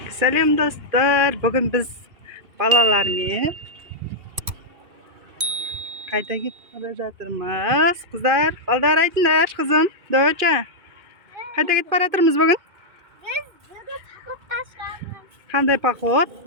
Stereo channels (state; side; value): late; left; 2.4 ms